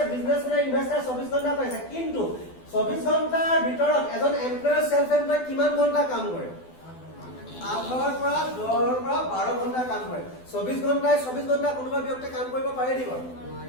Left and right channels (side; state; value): right; late; 12 ms